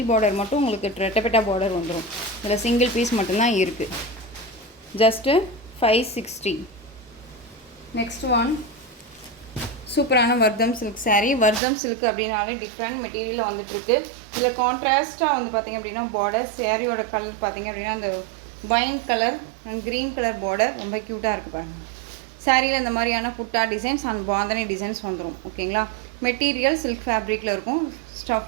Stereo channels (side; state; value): left; drops out; at 11.6 s